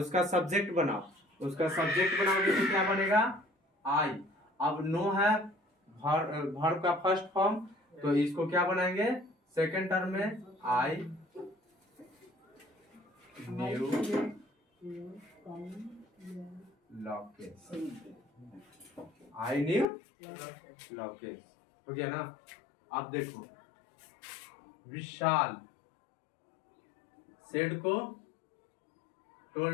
सब्जेक्ट बनाओ, उसका सब्जेक्ट बनाओगे तो क्या बनेगा, आई। अब नो है वर्ब का फर्स्ट फॉर्म, तो इसको क्या बनाएंगे सेकंड टर्म में, I knew Lokesh, I knew Lokesh. हो गया ना। अब देखो विशाल सेड को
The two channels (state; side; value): drops out; right; at 19.9 s